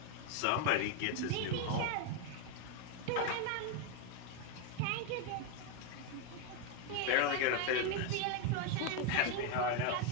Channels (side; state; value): both; different; correlation 0.02